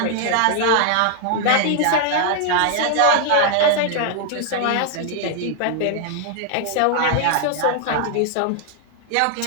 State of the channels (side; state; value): both; different; correlation 0.00